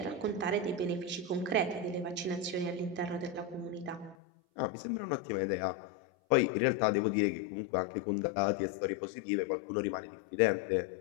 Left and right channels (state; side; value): drops out; right; at 4.2 s